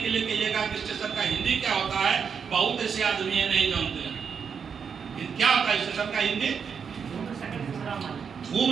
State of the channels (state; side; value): quieter; left; 6.6 dB